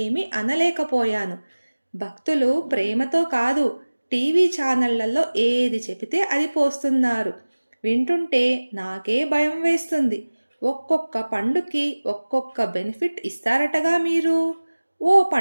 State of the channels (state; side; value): inverted; both; correlation -1.00